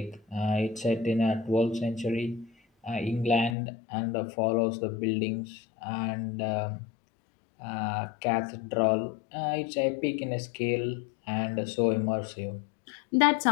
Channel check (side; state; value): right; drops out; at 3.6 s